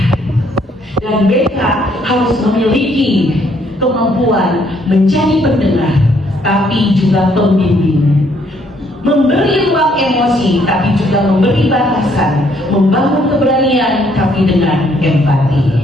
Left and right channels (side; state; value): both; normal; correlation 0.68